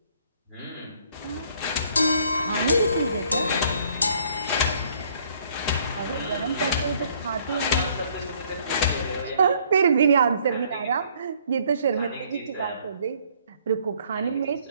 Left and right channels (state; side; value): inverted; both; correlation -0.62